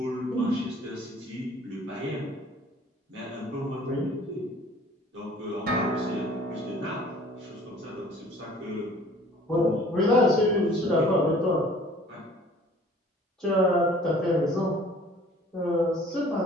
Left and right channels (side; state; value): both; normal; correlation 0.52